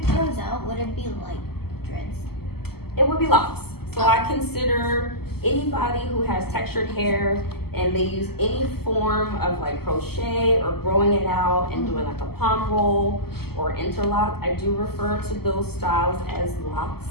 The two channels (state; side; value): late; right; 0.96 ms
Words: grows out, would it be like dreads? It would be locks. So I consider anybody who has textured hair and they use any form of like crochet or growing it out and doing like a palm roll or interlock, I do refer to those styles as locks.